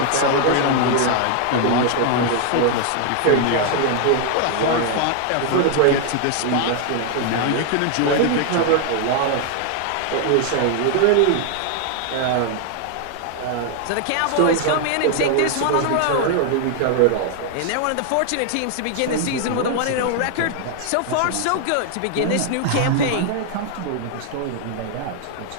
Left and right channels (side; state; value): both; different; correlation 0.00